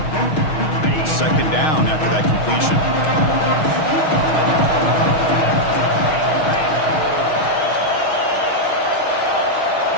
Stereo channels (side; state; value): right; late; 6.4 ms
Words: Second down after that completion.